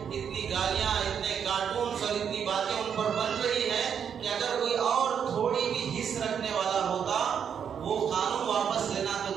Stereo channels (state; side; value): quieter; left; 7.7 dB